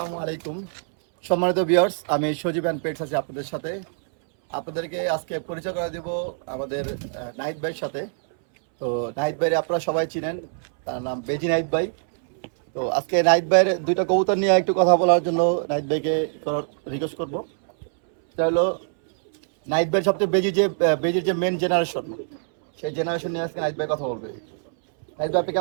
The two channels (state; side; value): silent; left; 63 dB below the other